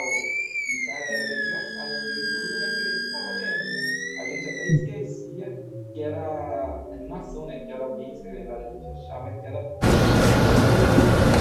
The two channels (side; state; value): both; identical; correlation 1.00